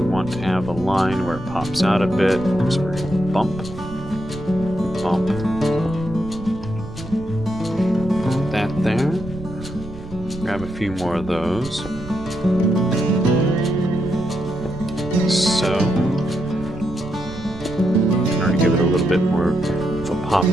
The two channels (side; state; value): right; noise; rumble, 13 dB below the sound